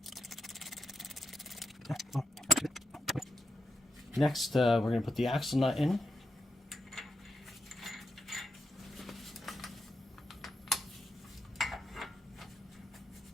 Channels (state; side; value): normal; both; correlation 0.85